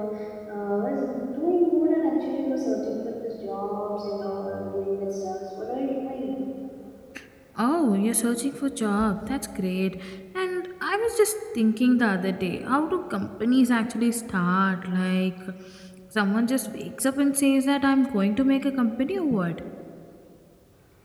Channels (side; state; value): both; identical; correlation 1.00